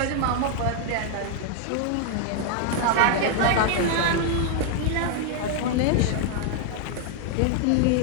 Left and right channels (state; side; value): different; both; correlation 0.00